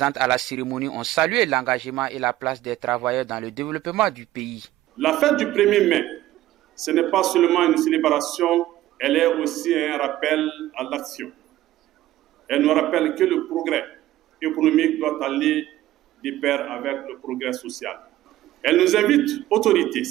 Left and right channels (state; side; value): quieter; left; 14.9 dB